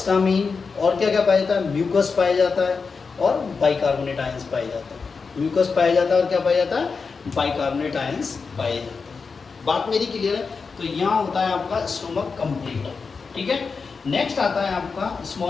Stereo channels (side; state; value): right; quieter; 4.9 dB